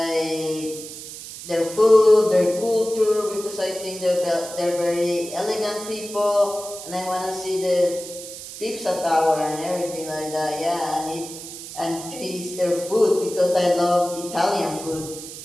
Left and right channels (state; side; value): noise; right; hiss, 12 dB below the sound